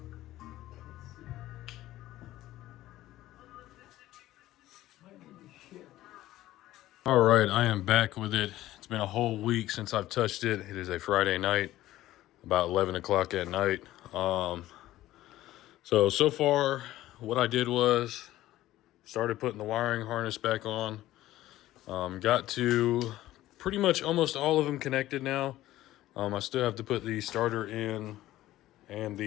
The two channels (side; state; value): right; quieter; 15.1 dB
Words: All right, I am back with it. It's been a whole week since I've touched it. It is a Friday night, about 11 o'clock at night. So far, what I did was started putting the wiring harness back on. Got to pretty much almost all of them connected now. I still have to put the starter in and